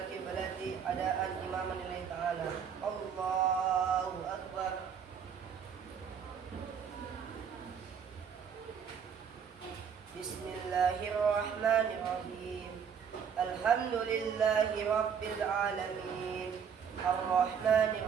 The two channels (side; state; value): left; quieter; 7.4 dB